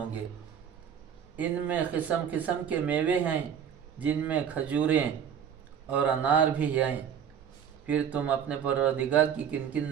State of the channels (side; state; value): left; quieter; 8.3 dB